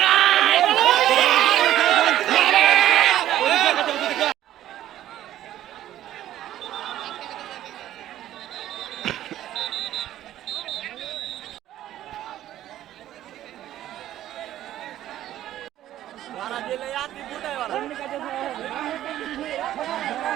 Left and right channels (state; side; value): quieter; left; 12.8 dB